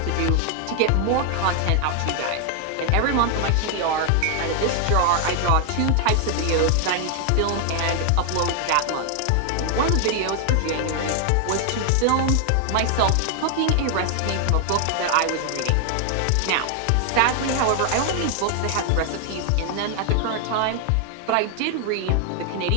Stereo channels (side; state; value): both; different; correlation 0.00